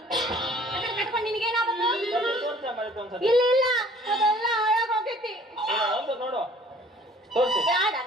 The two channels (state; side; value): normal; both; correlation 0.54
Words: ಕಟ್ಕೊಂಡು ನಿನಗೇನಾಗಬೇಕು ತತ್ತಿ ತೋರ್ಸ ಮತ್ತೆ ಒಂದ್ಸತಿ ಇಲ್ಲ ಇಲ್ಲ ಅದೆಲ್ಲ ಹಾಳಾಗ್ ಹೋಗೈತಿ ಒಂದು ನೋಡು ತೋರ್ಸಿ ಬೇಡ